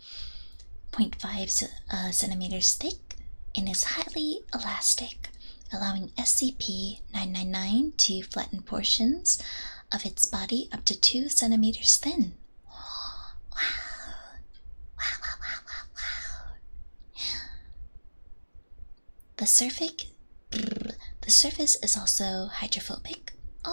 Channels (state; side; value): inverted; both; correlation -1.00